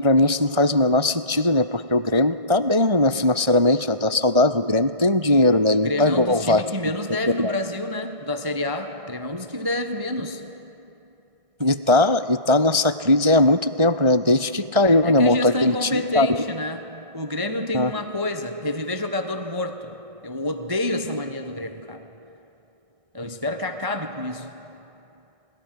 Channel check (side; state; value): left; late; 1.6 ms